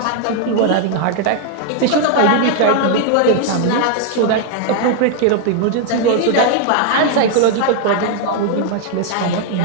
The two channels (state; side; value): different; both; correlation 0.00